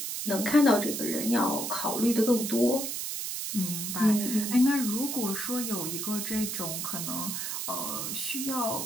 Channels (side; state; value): right; noise; hiss, 4 dB below the sound